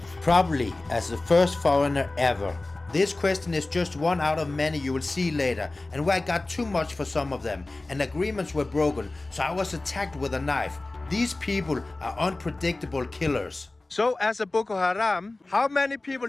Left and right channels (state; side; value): quieter; right; 3.0 dB